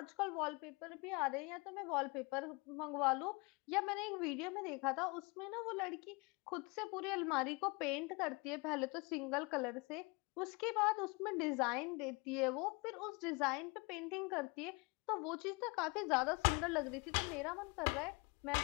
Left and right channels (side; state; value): right; quieter; 28.2 dB